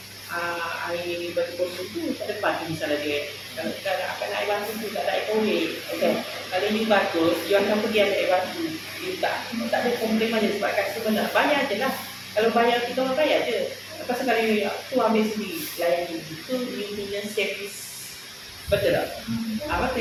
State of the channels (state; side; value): identical; both; correlation 1.00